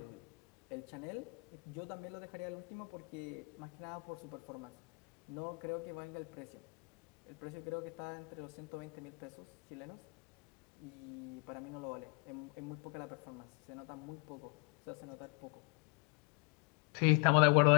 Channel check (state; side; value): quieter; right; 30.5 dB